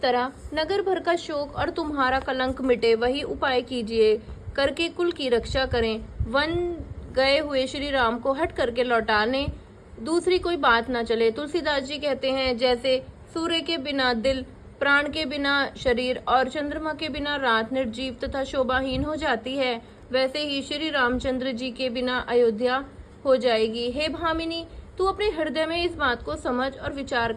तरह नगर भर का शोक और तुम्हारा कलंक मिटे, वही उपाय कीजिए, करके कुल की रक्षा करें। वन गए हुए श्री राम को हट करके लौटाने दूसरी कोई बात ना चले। तुलसीदास जी कहते हैं, जैसे सूर्य के बिना दिल, प्राण के बिना शरीर और चंद्रमा के बिना रात निर्जीव तथा शोभाहीन हो जाती है, वैसे ही श्री रामचंद्र जी के बिना अयोध्या हो जाएगी। हे भामिनी, तू अपने हृदय में इस बात को समझ और विचार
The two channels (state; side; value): identical; both; correlation 1.00